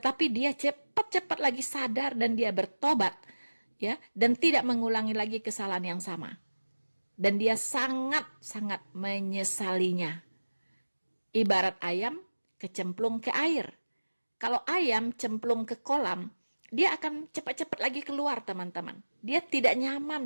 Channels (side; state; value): both; inverted; correlation -1.00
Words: dia cepat-cepat lagi sadar dan dia bertobat, ya, dan tidak mengulangi lagi kesalahan yang sama. Dan dia sangat-sangat menyesalinya. Ibarat ayam kecemplung ke air. Kalau ayam cemplung ke kolam, dia akan cepat-cepat lagi keluar, teman-teman. Dia tidak